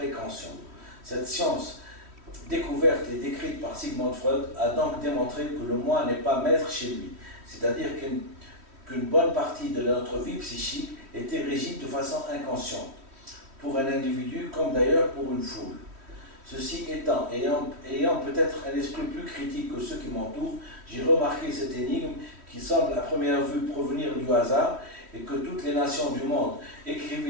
Cette science, découverte et décrite par Sigmund Freud, a donc démontré que le moi n'est pas maître chez lui, c'est-à-dire qu'une bonne partie de notre vie psychique était régie de façon inconsciente, pour un individu comme d'ailleurs pour une foule. Ceci étant, ayant peut-être un esprit plus critique que ceux qui m'entourent, j'ai remarqué cette énigme qui semble à première vue provenir du hasard et que toutes les nations du monde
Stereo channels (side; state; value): left; late; 3.1 ms